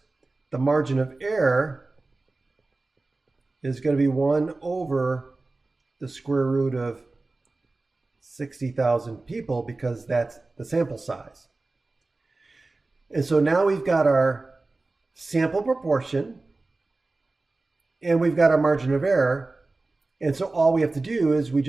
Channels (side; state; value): left; quieter; 3.3 dB